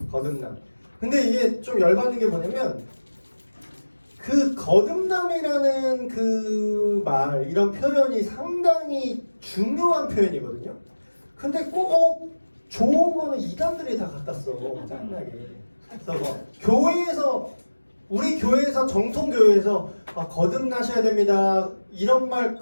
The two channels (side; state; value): both; inverted; correlation -1.00